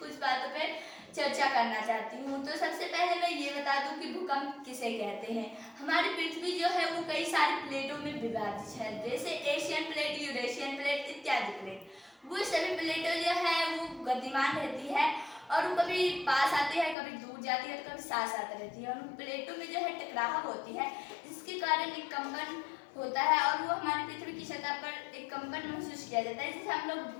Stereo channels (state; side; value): drops out; right; at 16.9 s